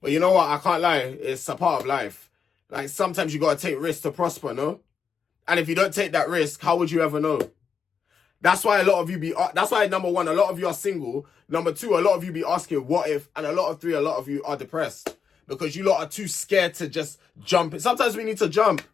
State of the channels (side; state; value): right; quieter; 6.5 dB